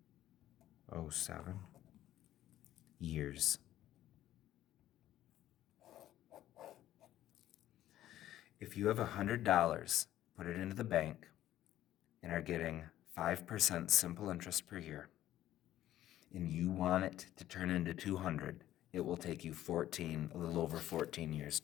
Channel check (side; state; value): right; quieter; 13.2 dB